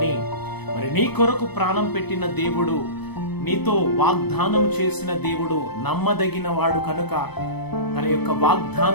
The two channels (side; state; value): right; late; 0.98 ms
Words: మరి నీ కొరకు ప్రాణం పెట్టిన దేవుడు, నీతో వాగ్దానం చేసిన దేవుడు నమ్మదగిన వాడు కనుక తన యొక్క